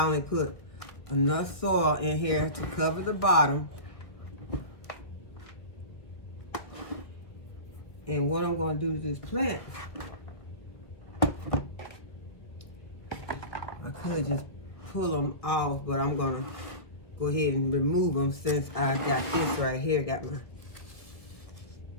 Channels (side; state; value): right; late; 1.9 ms